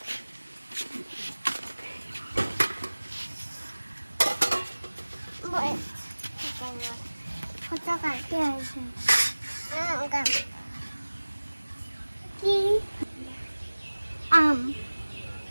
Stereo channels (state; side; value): inverted; both; correlation -1.00